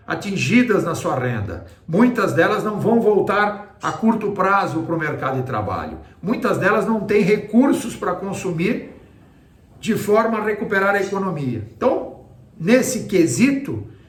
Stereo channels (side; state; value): both; identical; correlation 1.00